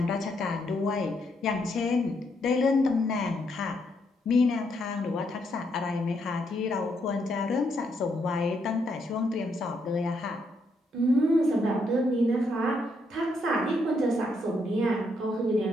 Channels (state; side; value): normal; both; correlation 0.76